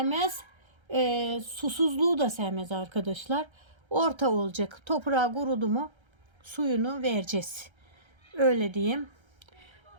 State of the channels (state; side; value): late; left; 1.3 ms